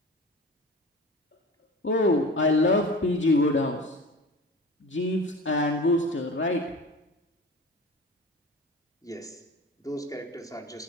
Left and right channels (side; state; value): both; normal; correlation 0.36